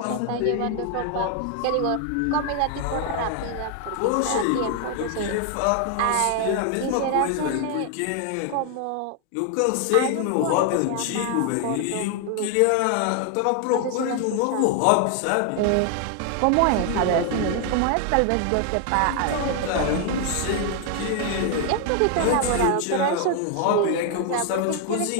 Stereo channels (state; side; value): different; both; correlation 0.00